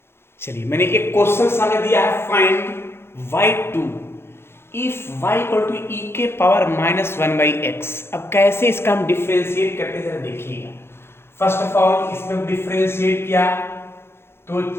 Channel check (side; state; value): right; late; 0.12 ms